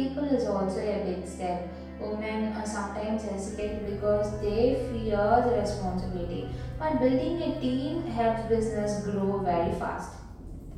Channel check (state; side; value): identical; both; correlation 1.00